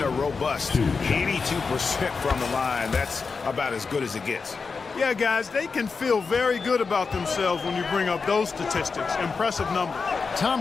a robust 82% from the line. That's about as good as it gets. Yeah, guys, they can feel very good about themselves when you bring up those statistics. Impressive numbers.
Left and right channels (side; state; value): right; quieter; 4.8 dB